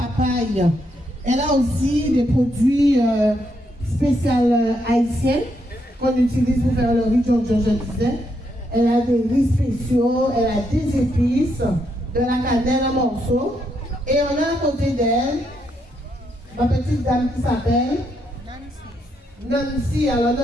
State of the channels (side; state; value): both; normal; correlation 0.78